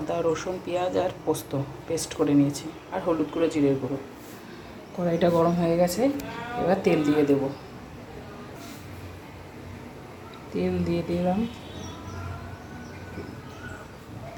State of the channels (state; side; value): identical; both; correlation 1.00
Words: রসুন পেঁয়াজ আর পোস্ত পেস্ট করে নিয়েছি, আর হলুদ গুঁড়ো জিরের গুঁড়ো। কড়াইটা গরম হয়ে গেছে, এবার তেল দিয়ে দেব। তেল দিয়ে দিলাম,